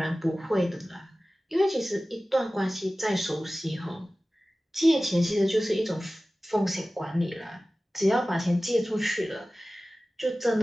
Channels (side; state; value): both; normal; correlation 0.97